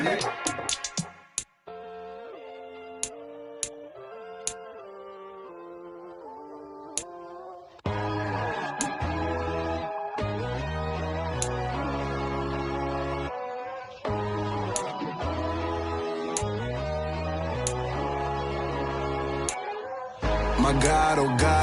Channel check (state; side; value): identical; both; correlation 1.00